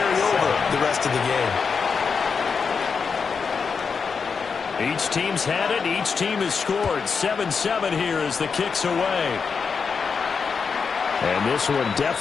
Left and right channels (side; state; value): right; quieter; 5.6 dB